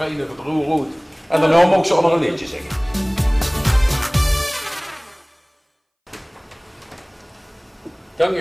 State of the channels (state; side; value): identical; both; correlation 1.00